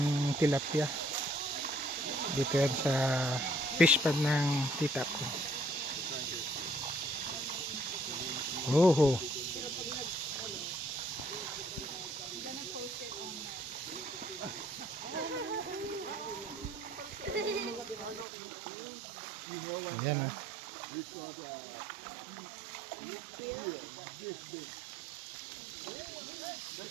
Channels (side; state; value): left; drops out; at 18.2 s